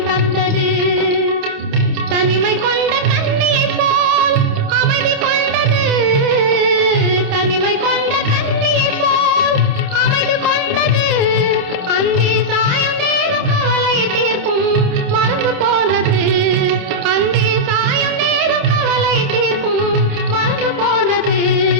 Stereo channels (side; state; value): left; late; 28 ms